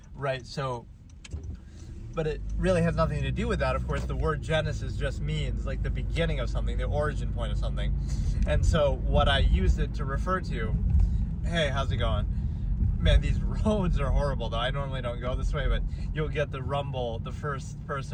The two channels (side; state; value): both; identical; correlation 1.00